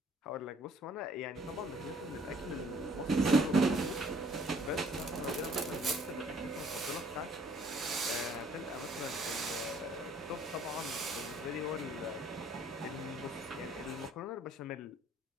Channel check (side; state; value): both; normal; correlation 0.59